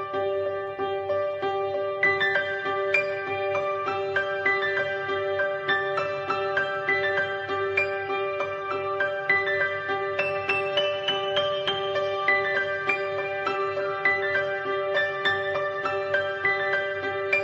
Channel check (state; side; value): identical; both; correlation 1.00